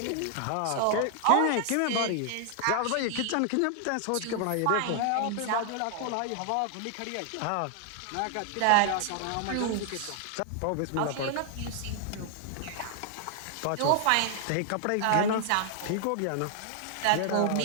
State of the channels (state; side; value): different; both; correlation 0.00